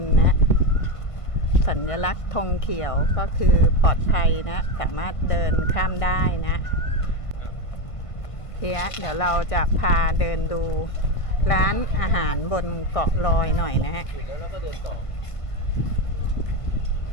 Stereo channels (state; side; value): late; right; 1.5 ms